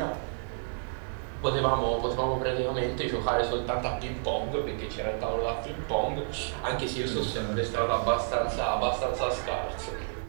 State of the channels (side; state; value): left; silent; digital silence